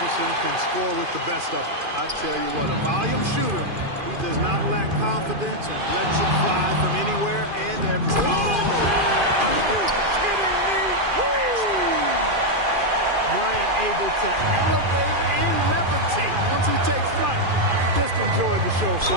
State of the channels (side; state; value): left; late; 2.5 ms